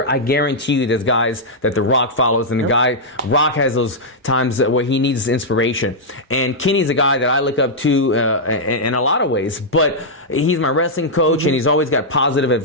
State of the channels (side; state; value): both; normal; correlation -0.07